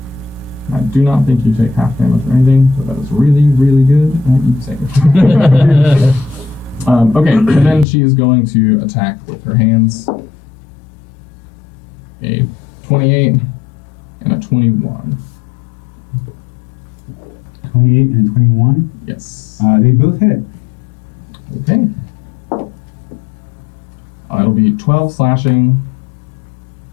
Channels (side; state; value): right; drops out; at 7.9 s